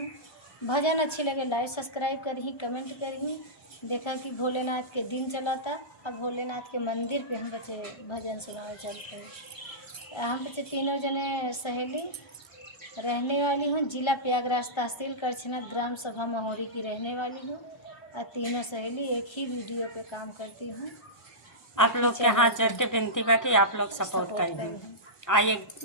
भजन अच्छी लगे लाइक सब्सक्राइब करी, कमेंट करी। देखा कि भोलेनाथ के दिन चला था, अब भोलेनाथ के मंदिर पे हम बच्चे भजन सुनाने चलते हैं। हम बच्चे तीनों जने सहेली रहने वाली हूँ। जिला प्रयागराज, तहसील करछना, ग्राम सभा महोरी की रहने वाली हूँ। और तीनों सहेली एक ही वीडियो पे काम करती हूँ। आप लोग के हाथ जोड़ के विनती बा कि आप लोग सपोर्ट करें। आइए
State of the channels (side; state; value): right; late; 1.3 ms